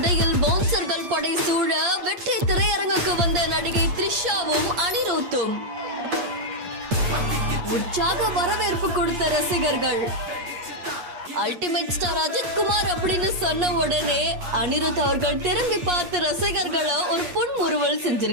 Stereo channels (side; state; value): left; late; 8.6 ms